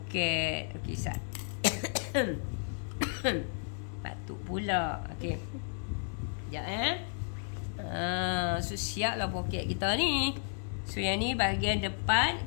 Okay, Sat. Batuk pula. Okay. Sekejap so siaplah poket kita ni. So yang ni bahagian depan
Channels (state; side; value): silent; right; digital silence